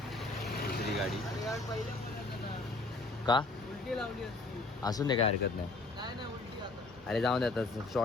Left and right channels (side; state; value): right; quieter; 3.2 dB